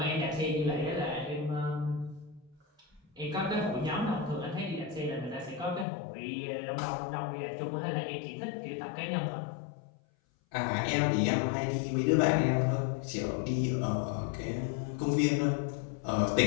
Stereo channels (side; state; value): right; drops out; at 5.9 s